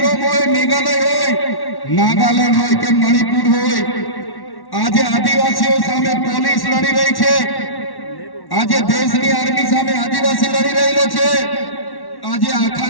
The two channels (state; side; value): late; right; 1.1 ms